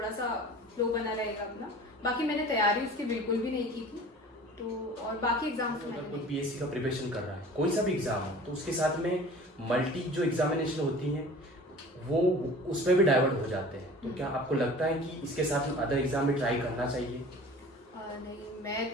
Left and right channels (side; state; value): both; normal; correlation 0.43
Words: सा फ्लो बना रहेगा अपना। बाकी मैंने तैयारी उसकी बिल्कुल भी नहीं की थी। तो और बाकी एग्जाम्स अगर कोई पीएससी का प्रिपरेशन कर रहा है, कोई सा भी एग्जाम हो, तो उसके साथ में मल्टी जो एग्जामिनेशन होती हैं वो उसमें भी डाइवर्ट हो जाते हैं, तो क्या आपको लगता है कि इसके साथ में अदर एग्जाम भी ट्राई करना चाहिए? नहीं, मैं